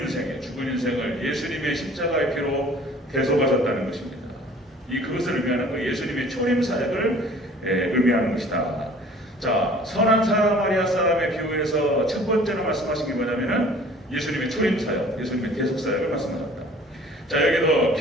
예수님의 십자가의 피로 대속하셨다는 것입니다. 그것을 의미하는 거예요. 예수님의 초림 사역을 의미하는 것이다. 자, 선한 사마리아 사람의 비유에서 첫 번째로 말씀하신 게 뭐냐면은 예수님의 초림 사역, 예수님의 대속 사역을 말씀하셨다. 자, 여기도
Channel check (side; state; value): both; normal; correlation 0.50